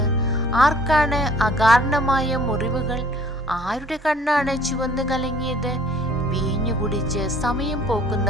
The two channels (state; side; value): normal; both; correlation 0.55